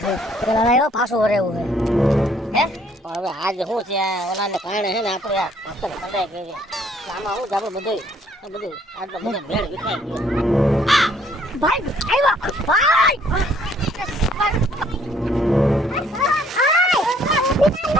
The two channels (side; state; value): both; normal; correlation 0.63